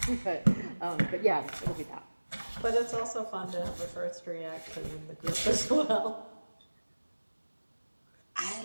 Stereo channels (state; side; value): inverted; both; correlation -1.00